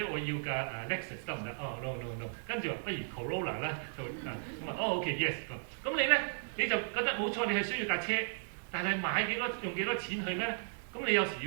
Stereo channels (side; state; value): left; silent; digital silence